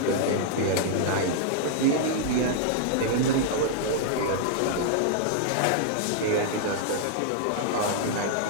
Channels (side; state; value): both; different; correlation -0.01